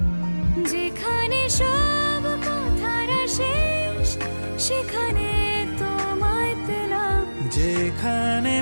যেখানে সব কথার শেষ সেখানে তোমায় পেলাম যেখানে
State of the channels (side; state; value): both; inverted; correlation -1.00